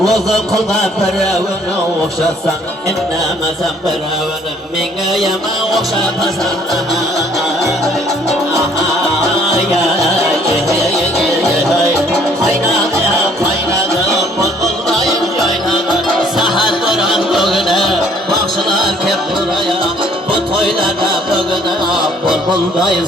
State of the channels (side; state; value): both; normal; correlation 0.60